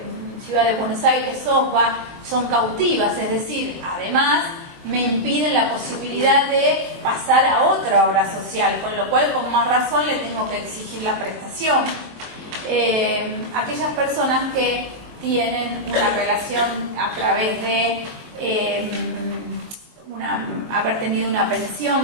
Ciudad de Buenos Aires, SOSBA, son cautivas, es decir, además me impiden la posibilidad de pasar a otra obra social, con lo cual con más razón le tengo que exigir la prestación. Aquellas personas que tienen una relación a través de haber tenido una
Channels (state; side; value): late; left; 23 ms